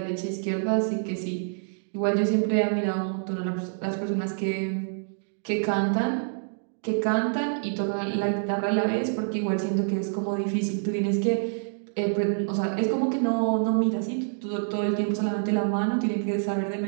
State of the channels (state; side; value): silent; left; digital silence